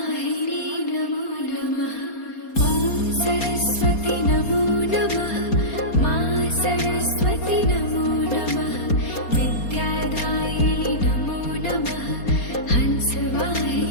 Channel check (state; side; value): late; right; 4.3 ms